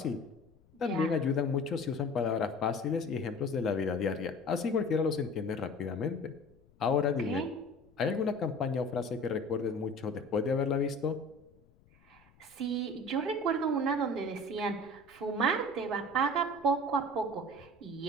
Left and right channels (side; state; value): left; noise; rumble, 30 dB below the sound